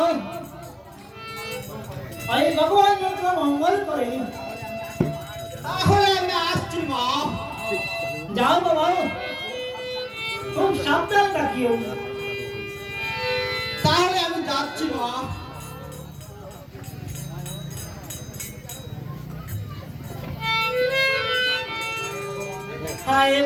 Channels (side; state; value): both; identical; correlation 1.00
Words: এই ভগবান যত মঙ্গল করে তাহলে আমি আসছি মা যাও বাবা খুব সাবধান থাকিও তাহলে আমি যাচ্ছি মা হায়